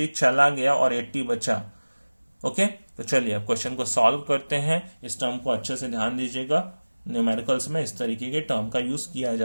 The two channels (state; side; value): inverted; both; correlation -1.00